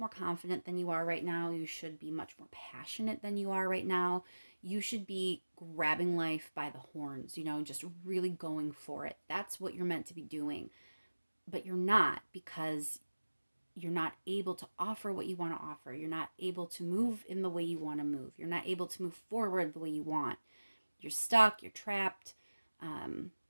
confident than you are right now. You should be much more passionate than you are right now. You should be grabbing life by the horns, just really going for it. That's what you're meant to be doing. But you're not, because you're not able to offer what you want to offer. You're not able to move in the way you want to move. You're not able to move forward the way you want. You're stuck, you're trapped.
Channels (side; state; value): both; inverted; correlation -1.00